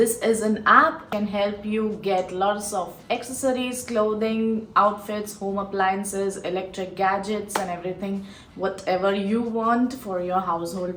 is an app can help you get lots of accessories, clothing, outfits, home appliances, electric gadgets and everything, whatever you want for your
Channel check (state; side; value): identical; both; correlation 1.00